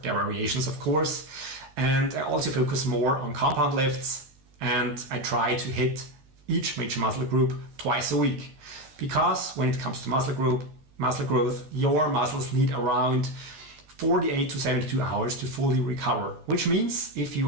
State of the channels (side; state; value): left; late; 14 ms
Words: their variations, of course. And I also focus more on compound lifts, and I try to hit each major muscle group twice a week. Because when it comes to muscle growth, your muscles need around 48 to 72 hours to fully recover, which means if